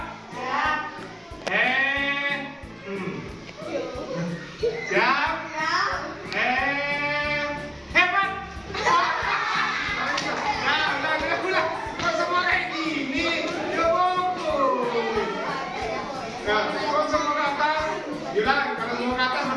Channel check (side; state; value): both; identical; correlation 1.00